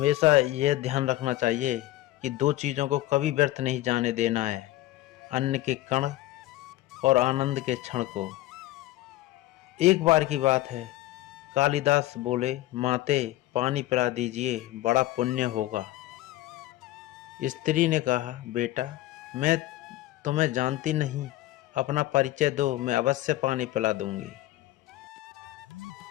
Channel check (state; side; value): quieter; right; 16.4 dB